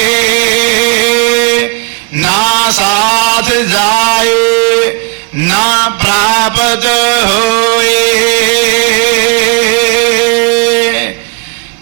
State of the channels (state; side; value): quieter; left; 33.8 dB